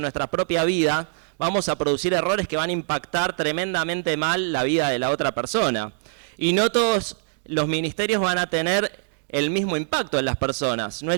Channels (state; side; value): silent; left; digital silence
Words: nuestra propia vida, vamos a producir errores que van a impactar tremendamente mal la vida de la otra persona. Y no todos los ministerios van a tener el mismo impacto en las personas. No